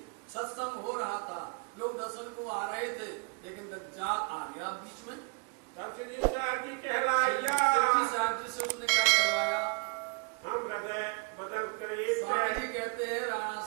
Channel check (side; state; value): left; quieter; 33.6 dB